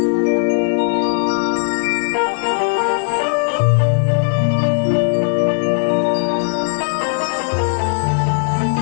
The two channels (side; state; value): right; silent; digital silence